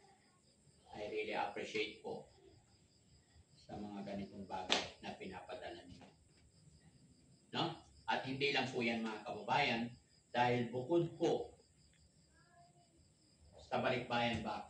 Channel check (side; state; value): both; identical; correlation 1.00